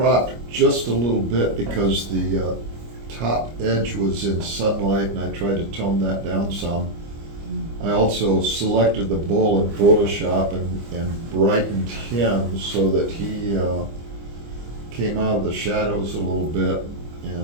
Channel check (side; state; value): left; late; 25 ms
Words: just a little bit because the top edge was in sunlight, and I tried to tone that down some. I also selected the bull in Photoshop and brightened him so that he came out of the shadows a little bit,